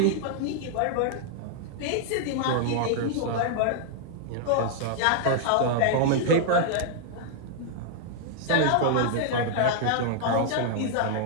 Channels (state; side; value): different; both; correlation 0.00